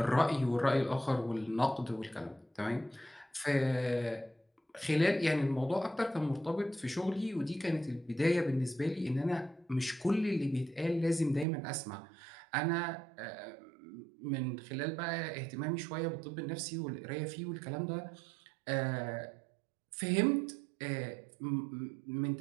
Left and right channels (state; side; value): drops out; left; at 11.5 s